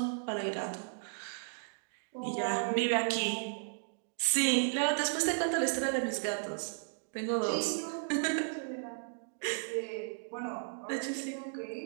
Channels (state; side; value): silent; left; digital silence